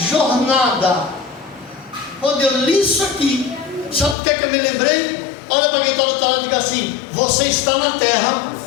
jornada. Quando eu li isso aqui, sabe o que é que eu me lembrei? Olha para quem está do outro lado e diga assim: você está na terra,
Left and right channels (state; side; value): drops out; right; at 4.2 s